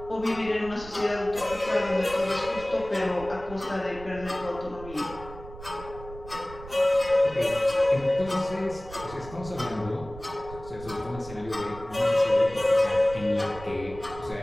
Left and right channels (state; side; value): noise; right; rumble, 15 dB below the sound